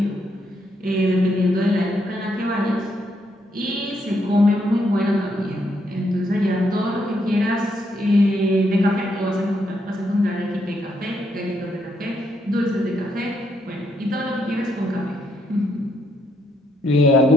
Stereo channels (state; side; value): normal; both; correlation 0.76